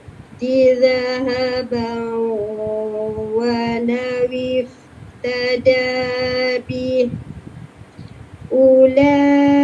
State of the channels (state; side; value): identical; both; correlation 1.00